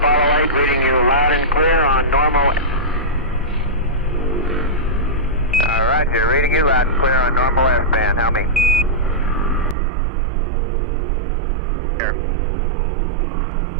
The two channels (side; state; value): left; drops out; at 9.8 s